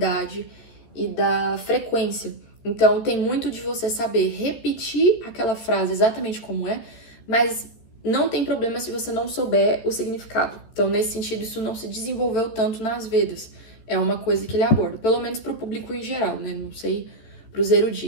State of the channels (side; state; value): right; late; 13 ms